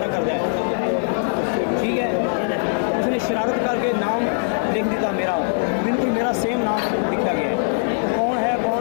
कर जाए, ठीक है। उसने शरारत करके नाम लिख दिया मेरा, बिल्कुल मेरा सेम नाम लिखा गया है। कौन है कौन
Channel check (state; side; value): silent; right; 65 dB below the other